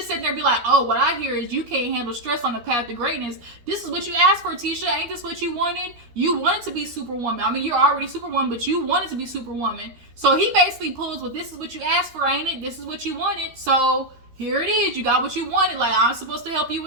sit there and be like, oh, what I hear is you can't handle stress on the path to greatness. This is what you asked for, Tisha. Ain't this what you wanted? You wanted to be Superwoman. I mean, you're already Superwoman, but you wanted to be Superwoman. So he basically pulls, well, this is what you asked for, ain't it? This is what you wanted. So here it is. You got what you wanted. Like, I'm supposed to help you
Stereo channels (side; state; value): left; late; 13 ms